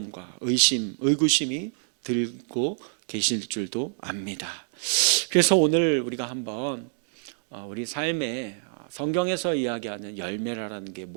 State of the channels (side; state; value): left; silent; digital silence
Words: 의구심이 들고 계실 줄도 압니다. 그래서 오늘 우리가 한번 우리 삶에 성경에서 이야기하는 열매라는 게